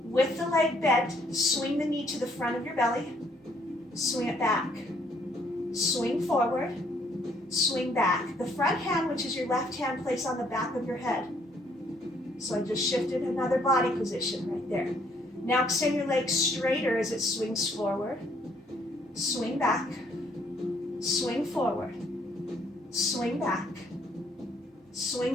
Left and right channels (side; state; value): both; normal; correlation 0.66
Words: With the leg bent, swing the knee to the front of your belly. Swing it back. Swing forward. Swing back. The front hand, which is your left hand, place on the back of your head. So I just shifted another body position right there. Now extend your legs straighter as it swings forward. Swing back. Swing forward. Swing back.